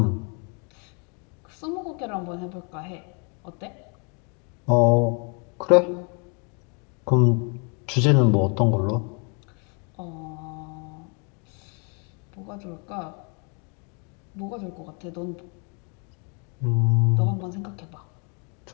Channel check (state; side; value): quieter; right; 36.2 dB